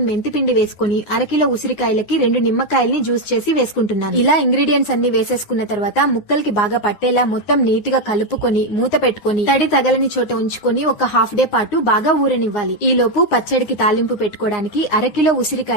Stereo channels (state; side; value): late; right; 10 ms